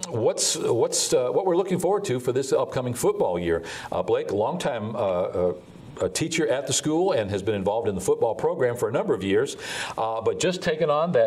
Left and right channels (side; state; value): both; identical; correlation 1.00